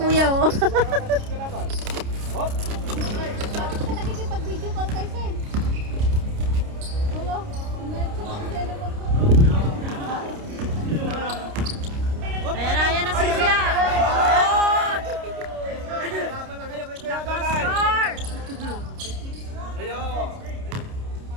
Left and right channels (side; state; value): left; late; 29 ms